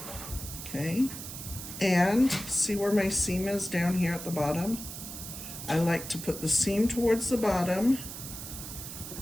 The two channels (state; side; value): noise; right; hiss, 10 dB below the sound